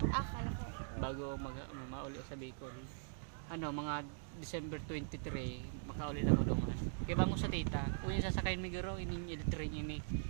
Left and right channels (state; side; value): silent; left; digital silence